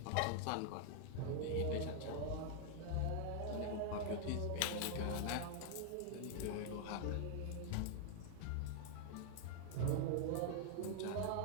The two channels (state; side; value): different; both; correlation 0.00